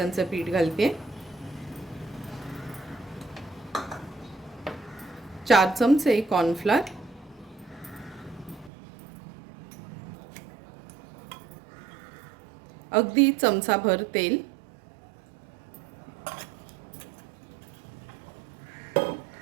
पीठ घालते. 4 चमचे कॉर्नफ्लॉर, अगदी चमचाभर तेल,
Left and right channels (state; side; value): drops out; left; at 8.7 s